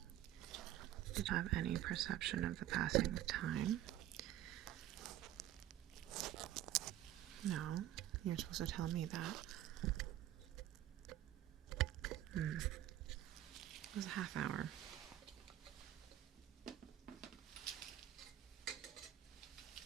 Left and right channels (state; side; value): quieter; left; 13.0 dB